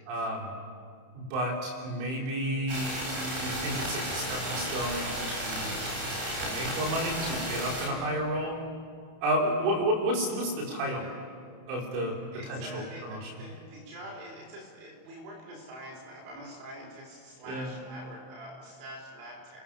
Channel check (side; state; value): left; late; 31 ms